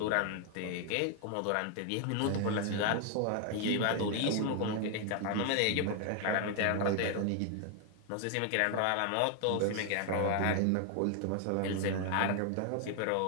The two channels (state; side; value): different; both; correlation 0.00